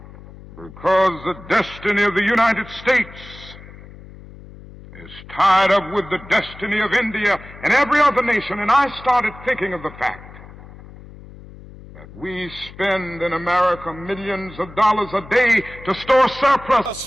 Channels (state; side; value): noise; left; hum, 18 dB below the sound